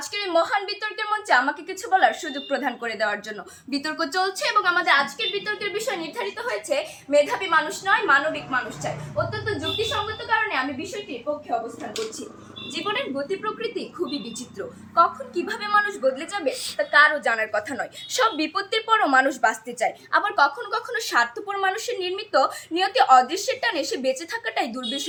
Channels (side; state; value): both; identical; correlation 1.00